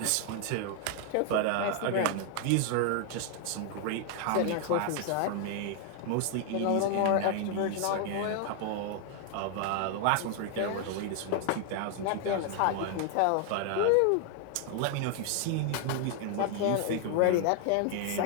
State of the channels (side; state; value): both; different; correlation 0.00